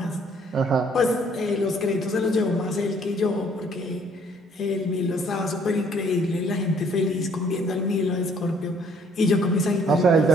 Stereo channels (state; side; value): normal; both; correlation 0.62